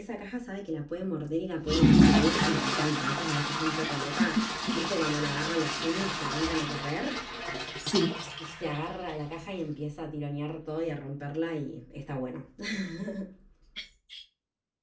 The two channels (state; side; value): identical; both; correlation 1.00